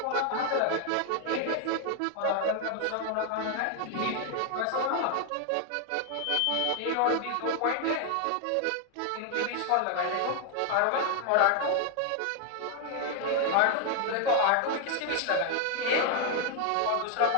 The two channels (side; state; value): both; different; correlation 0.00